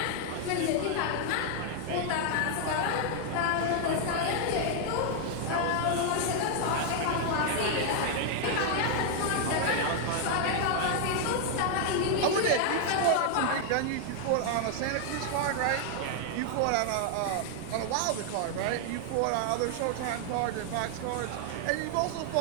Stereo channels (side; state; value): both; different; correlation 0.00